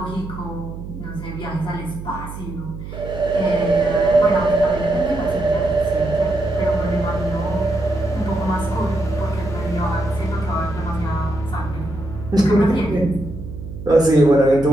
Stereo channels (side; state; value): right; noise; hum, 10 dB below the sound